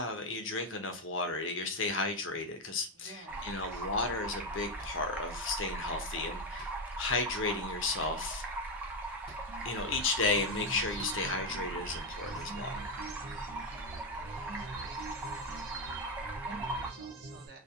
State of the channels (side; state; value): both; normal; correlation 0.08